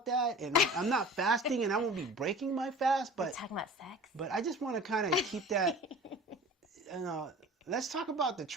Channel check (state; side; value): normal; both; correlation 0.41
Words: that, and I'm not fasting, and I won't be breaking my fast, but... We're talking about sex? But I just want to kind of keep that, let's talk about the